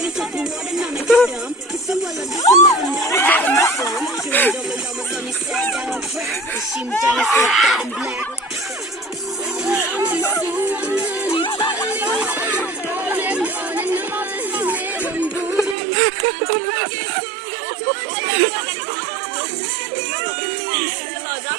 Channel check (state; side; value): drops out; left; at 15.8 s